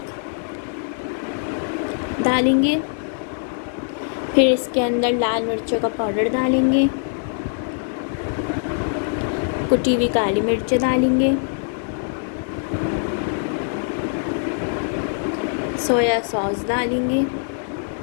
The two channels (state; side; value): silent; right; digital silence